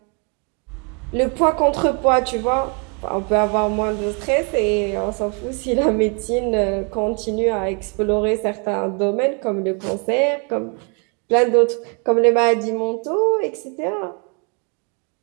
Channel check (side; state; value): left; quieter; 36.7 dB